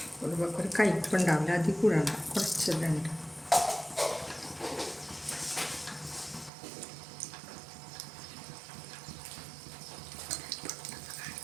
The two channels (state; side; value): drops out; left; at 6.5 s